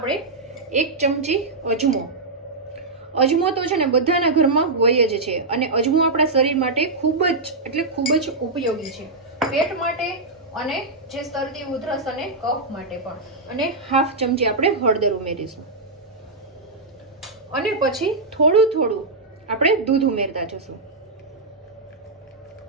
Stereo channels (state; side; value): quieter; left; 3.4 dB